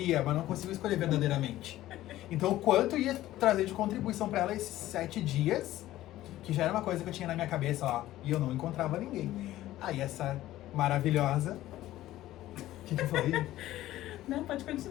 mas não conseguiu escolher verdadeiramente. Então, o quanto ia trazer de contribuição para ela esses 7 dias, que já era uma coisa que eu tinha na minha cabeça, ó, e eu não encontrava ninguém. Aí essa maravilhosa... O que foi? Não, pode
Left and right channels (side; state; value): right; quieter; 14.9 dB